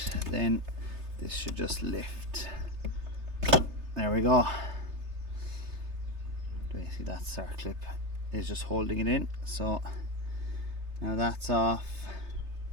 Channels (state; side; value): late; left; 3.3 ms